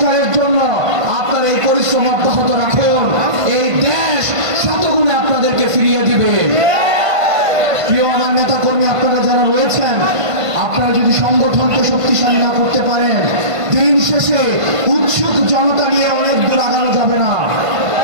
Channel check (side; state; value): left; late; 1.5 ms